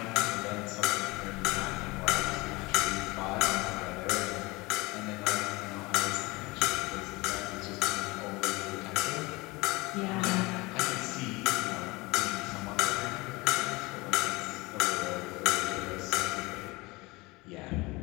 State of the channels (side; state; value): right; quieter; 23.2 dB